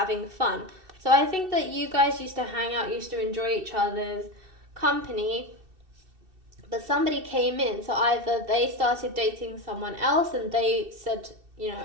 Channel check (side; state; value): left; late; 2.7 ms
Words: fun. So I think that you guys used to hang out, used to enjoy each other's company, but somebody came in. So either they started dating someone else and they said, you know,